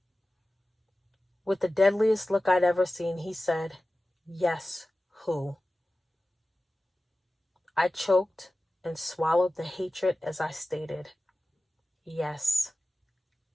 With the deadliest look I'd ever seen, he said, yes, who? I choked and swallowed the hatred as I stated, yes,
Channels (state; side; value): normal; both; correlation 0.95